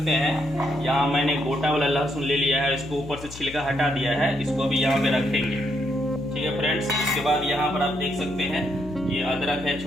हैं यहाँ मैंने गोटा वाला लहसुन ले लिया है, इसको ऊपर से छिलका हटा दिया है। इसको अभी यहाँ पे रखेंगे, ठीक है फ्रेंड्स। इसके बाद यहाँ पर आप देख सकते हैं ये अदरक है,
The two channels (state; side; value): noise; left; hum, 14 dB below the sound